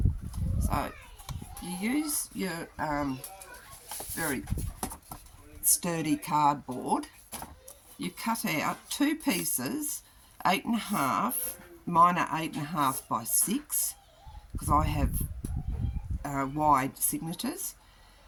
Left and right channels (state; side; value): identical; both; correlation 1.00